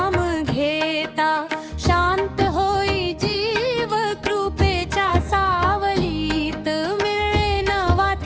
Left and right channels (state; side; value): identical; both; correlation 1.00